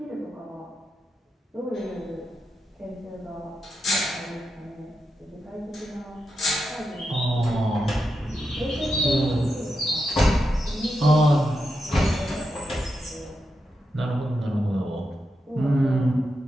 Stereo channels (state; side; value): normal; both; correlation 0.87